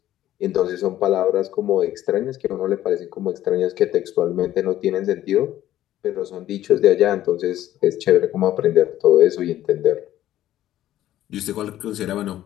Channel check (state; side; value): quieter; right; 13.2 dB